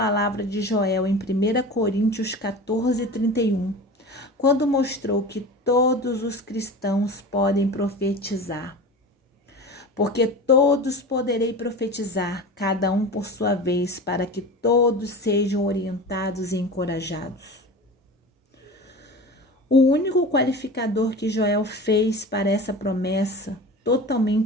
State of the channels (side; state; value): both; normal; correlation 0.33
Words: de Joel em 1 Coríntios 14:31, quando mostrou que todos os cristãos podem profetizar. Porque todos poderei profetizar, cada um por sua vez, para que todos sejam orientados e encorajados. O único qualificador que Joel fez para essa promessa,